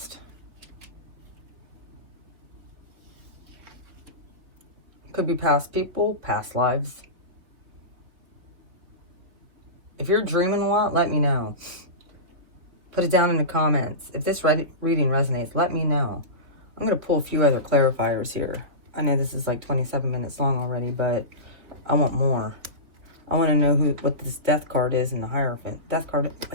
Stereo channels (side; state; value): left; late; 3.5 ms